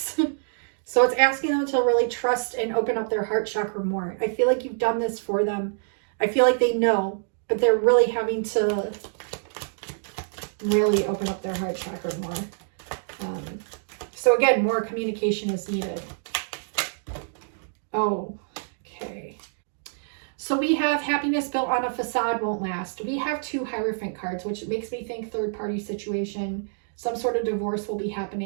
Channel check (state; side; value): silent; left; digital silence